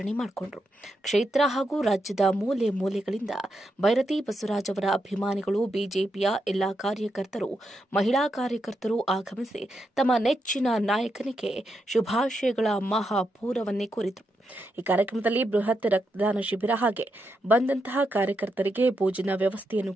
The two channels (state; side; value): normal; both; correlation 0.83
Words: ಮಾಡಿಕೊಂಡರು. ಕ್ಷೇತ್ರ ಹಾಗೂ ರಾಜ್ಯದ ಮೂಲೆ ಮೂಲೆಗಳಿಂದ ಬೈರತಿ ಬಸವರಾಜ್ ಅವರ ಅಭಿಮಾನಿಗಳು, ಬಿಜೆಪಿಯ ಎಲ್ಲಾ ಕಾರ್ಯಕರ್ತರು, ಮಹಿಳಾ ಕಾರ್ಯಕರ್ತರು ಆಗಮಿಸಿ ತಮ್ಮ ನೆಚ್ಚಿನ ನಾಯಕನಿಗೆ ಶುಭಾಶಯಗಳ ಮಹಾಪೂರವನ್ನೇ ಕೋರಿದರು. ಈ ಕಾರ್ಯಕ್ರಮದಲ್ಲಿ ಬೃಹತ್ ರಕ್ತದಾನ ಶಿಬಿರ ಹಾಗೆ ಬಂದಂತಹ ಕಾರ್ಯಕರ್ತರಿಗೆ ಭೋಜನ ವ್ಯವಸ್ಥೆಯನ್ನು